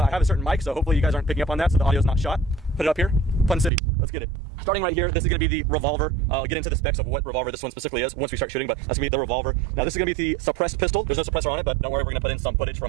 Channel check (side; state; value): left; drops out; at 3.7 s